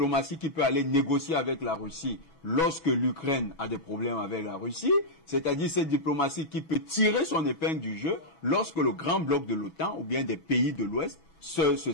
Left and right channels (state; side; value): late; right; 6.1 ms